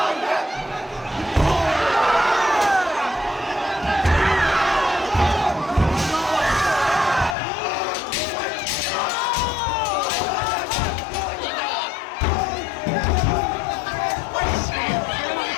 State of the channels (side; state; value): right; drops out; at 7.4 s